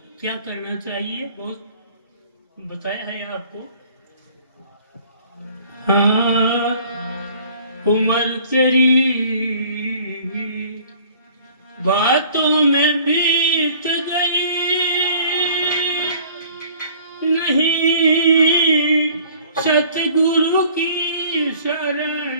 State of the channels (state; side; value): inverted; both; correlation -0.52